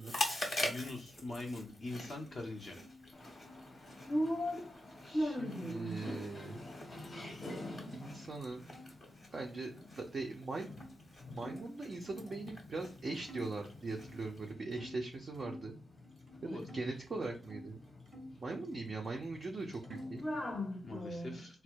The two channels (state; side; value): normal; both; correlation 0.88